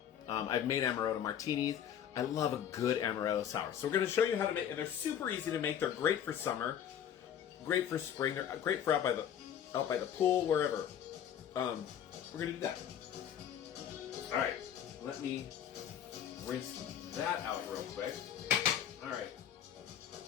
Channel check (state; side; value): quieter; right; 9.4 dB